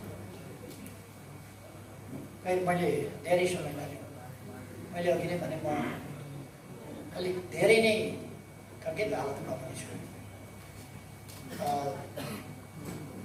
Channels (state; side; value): identical; both; correlation 1.00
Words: मैले धेरै समय लाग्यो। मैले अघि नै भने म अलिक धेरै नै खङ्गित हालतमा पनि छु।